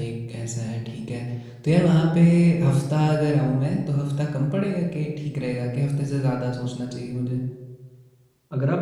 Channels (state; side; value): identical; both; correlation 1.00